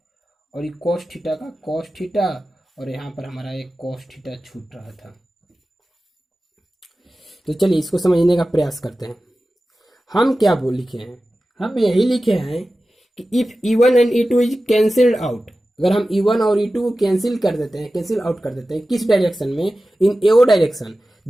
और ये cos थीटा का cos थीटा, और यहाँ पर हमारा एक cos थीटा छूट रहा था। तो चलिए इसको समझने का प्रयास करते हैं। हम क्या लिखे हैं, हम यही लिखे हैं कि if E1 and E2 is cancelled out, अगर हम E1 और E2 को कैंसिल आउट कर देते हैं किस डायरेक्शन में, in AO direction,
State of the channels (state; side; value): normal; both; correlation 0.95